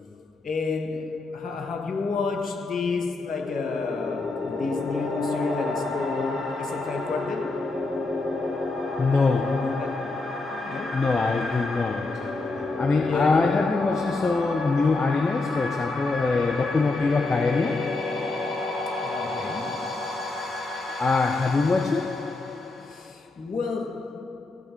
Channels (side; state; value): right; quieter; 3.4 dB